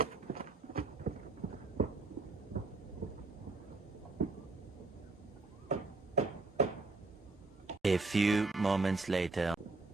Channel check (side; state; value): left; quieter; 3.6 dB